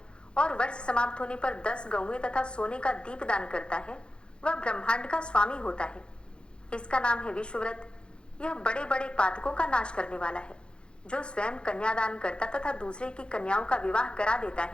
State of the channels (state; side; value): late; right; 0.053 ms